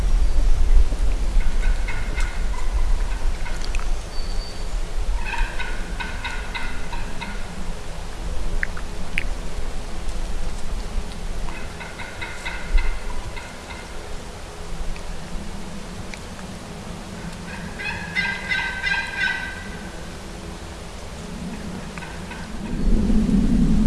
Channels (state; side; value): identical; both; correlation 1.00